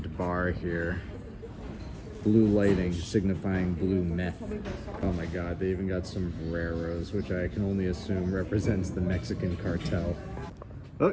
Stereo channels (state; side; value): identical; both; correlation 1.00